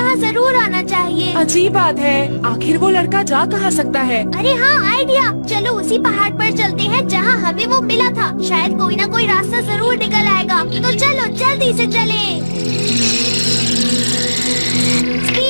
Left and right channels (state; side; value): inverted; both; correlation -1.00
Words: जरूर आना चाहिए। अजीब बात है, आखिर वो लड़का जा कहाँ सकता है? अरे हाँ, आइडिया। चलो उसी पहाड़ पर चलते हैं जहाँ हमें वो मिला था। शायद कोई ना कोई रास्ता जरूर निकल आएगा। तो चलो जल्दी से चलें।